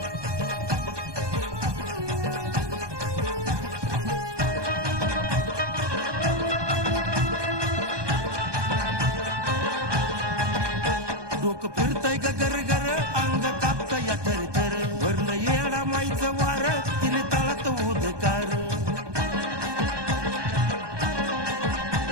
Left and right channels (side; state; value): left; late; 1.2 ms